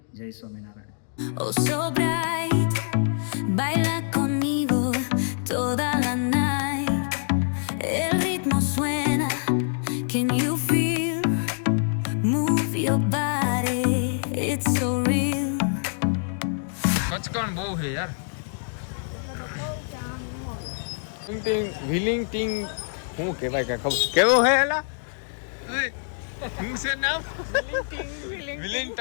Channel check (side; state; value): right; silent; digital silence